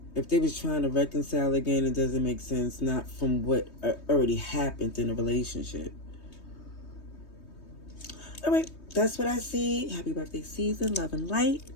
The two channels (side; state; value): right; late; 3.2 ms